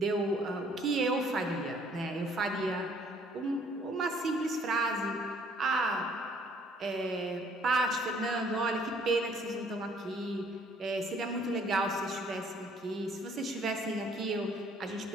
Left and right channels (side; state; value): both; normal; correlation 0.60